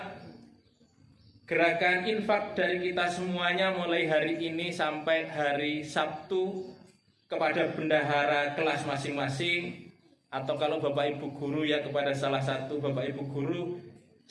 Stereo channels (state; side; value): identical; both; correlation 1.00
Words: gerakan infak dari kita semuanya mulai hari ini sampai hari Sabtu kepada bendahara kelas masing-masing, atau kalau Bapak Ibu guru ya kepada salah satu Bapak Ibu guru,